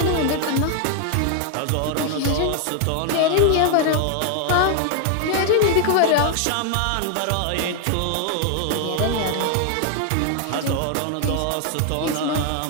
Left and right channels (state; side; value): different; both; correlation 0.00